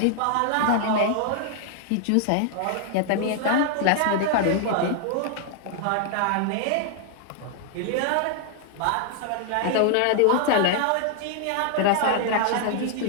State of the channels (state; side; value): different; both; correlation 0.00